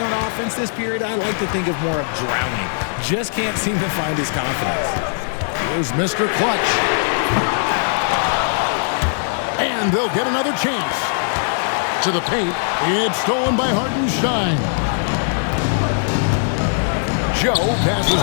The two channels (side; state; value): right; silent; digital silence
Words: offense this period. I like to think of more of drowning. Just can't seem to find his confidence. Here's Mr. Clutch. And they'll get another chance. To the paint. It's stolen by Hartenstein. Joe passes